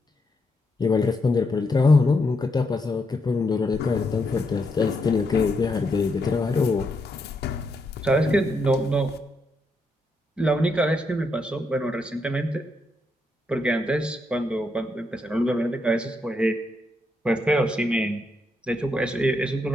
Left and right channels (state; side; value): normal; both; correlation 0.80